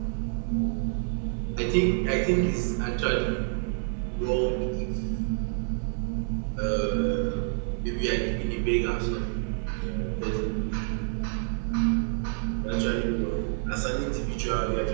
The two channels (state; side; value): silent; left; 59 dB below the other